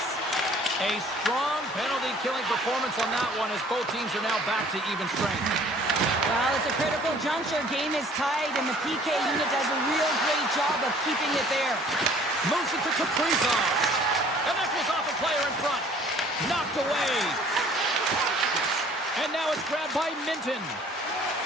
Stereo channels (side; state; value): both; normal; correlation 0.54